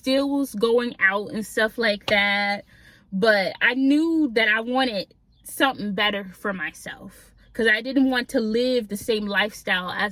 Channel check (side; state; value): both; identical; correlation 1.00